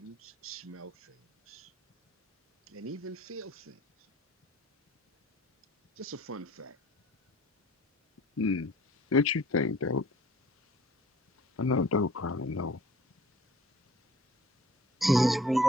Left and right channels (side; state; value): both; normal; correlation 0.52